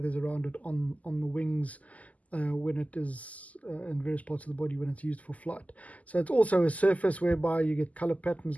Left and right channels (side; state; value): right; late; 0.074 ms